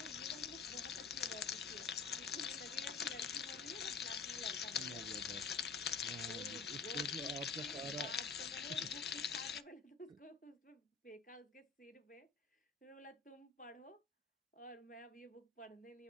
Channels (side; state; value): right; quieter; 5.5 dB